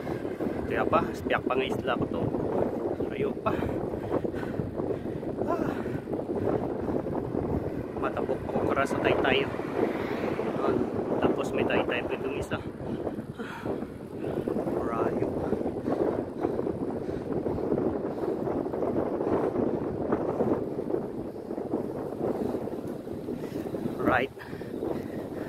Kaya pa, spiyak pa nga isla ko to. Ayaw pa. Matapok ako kara sa Taytay. Tapos may Taytay pa itong isa. Rayo. Right.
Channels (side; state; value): both; identical; correlation 1.00